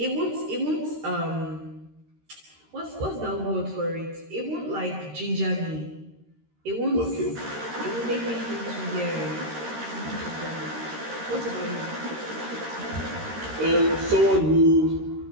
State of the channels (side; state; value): left; late; 13 ms